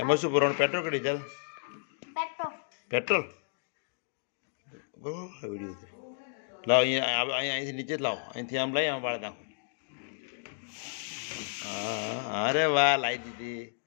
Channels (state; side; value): silent; right; digital silence